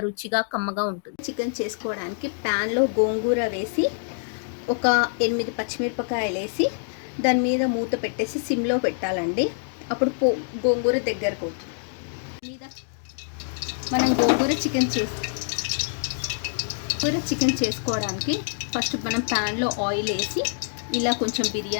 రుచిగా కమ్మగా ఉంటుంది. చికెన్ చేసుకోవడానికి ప్యాన్లో గోంగూర వేసి ఒక 8 పచ్చిమిరపకాయలు వేసి దాని మీద మూత పెట్టేసి సిమ్లో పెట్టాలండి. అప్పుడు గోంగూర దగ్గరకు అవుతుంది. మీద మనం గోంగూర చికెన్ చేసుకోవడానికి ఫస్ట్ మనం ప్యాన్లో ఆయిల్ వేసి ఇలా కొంచెం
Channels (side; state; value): right; silent; digital silence